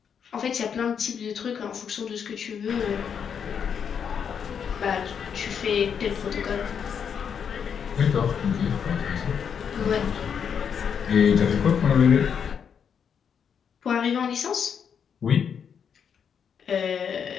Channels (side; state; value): right; quieter; 7.4 dB